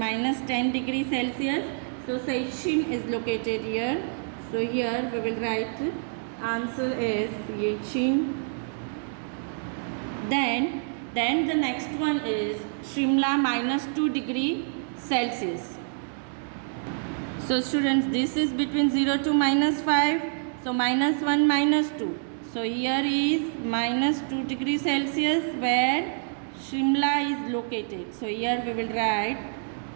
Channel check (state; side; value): silent; left; digital silence